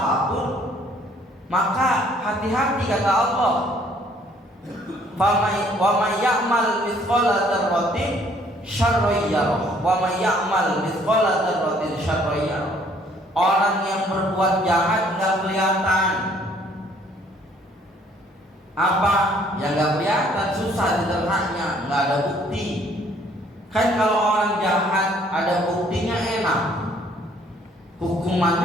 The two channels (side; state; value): both; normal; correlation 0.62